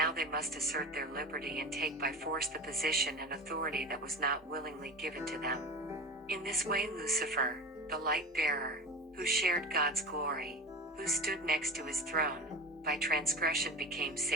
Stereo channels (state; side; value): normal; both; correlation 0.30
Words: they must assert their liberty and take by force the position and authority that was not willingly given to them. In this way Lucifer, the light-bearer, who shared God's glory, who stood next to his throne, by transgression became